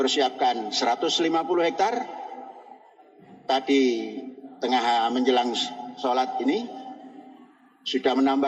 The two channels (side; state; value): both; identical; correlation 1.00